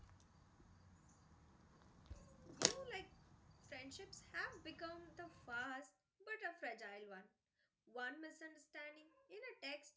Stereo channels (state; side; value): identical; both; correlation 1.00